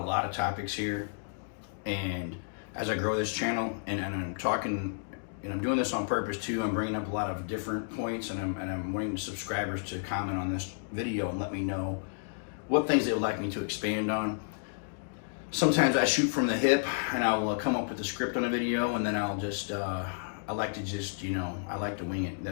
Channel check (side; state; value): right; silent; digital silence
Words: lot of topics here. And as I grow this channel, and I'm talking, and I'm doing this on purpose too, I'm bringing up a lot of different points, and I'm wanting subscribers to comment on this video and let me know what things they would like me to expand on. Sometimes I shoot from the hip, and I'll come up with a script on a video, and then I'll just, I like to wing it.